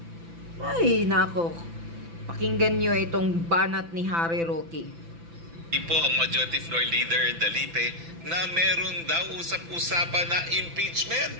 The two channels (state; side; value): late; left; 6.0 ms